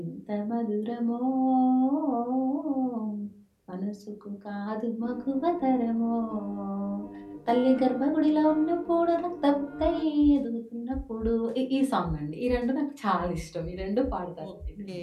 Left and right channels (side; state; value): both; identical; correlation 1.00